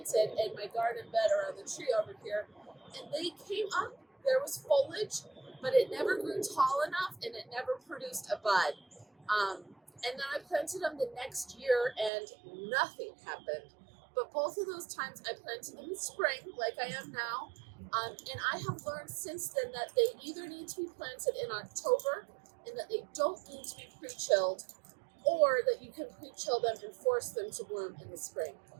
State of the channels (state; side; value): drops out; left; at 12.1 s